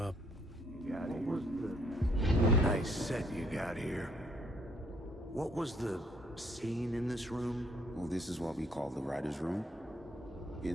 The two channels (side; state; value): both; normal; correlation 0.67